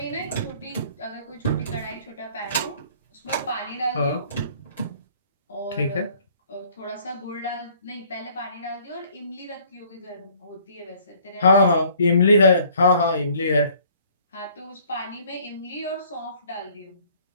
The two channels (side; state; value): both; inverted; correlation -0.57